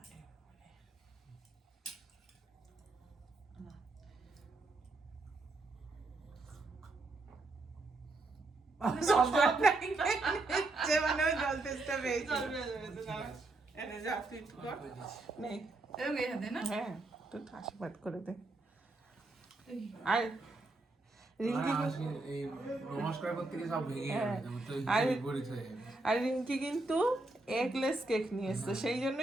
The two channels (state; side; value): quieter; left; 3.0 dB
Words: সব জল নাই, যে মানে ওই জল টেস্টটা পেয়েছি। এনে যা তুই একটু কর। নে। এরকম এই হাতে না? হ্যাঁ, তুই আশীর্বাদ করে দে। আর রিঙ্কি এই নমস্কার করতে গিয়ে সব ভেঙে হ্যাঁ। যাবে তো আর- বিপরীত হয়ে যাবে। আর রিঙ্কি কিন্তু এগলেস কেক নিয়ে এসছে, সেই